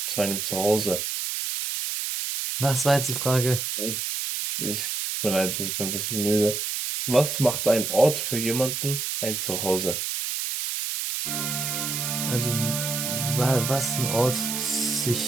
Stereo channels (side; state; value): right; noise; hiss, 2 dB below the sound